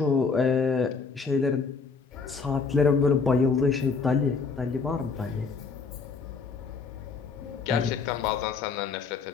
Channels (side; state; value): right; quieter; 4.9 dB